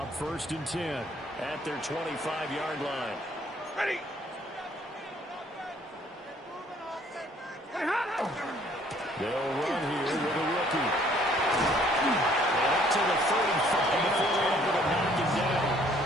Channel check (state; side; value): normal; both; correlation 0.61